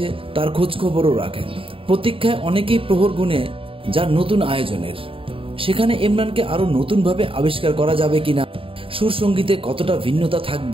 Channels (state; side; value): late; left; 0.26 ms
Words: তার খোঁজখবরও রাখেন। প্রতীক্ষায় অনেকেই প্রহর গুনে যার নতুন আয়োজনের। সেখানে ইমরানকে আরো নতুনভাবে আবিষ্কার করা যাবে কিনা, সুর সঙ্গীতে কতটা ভিন্নতা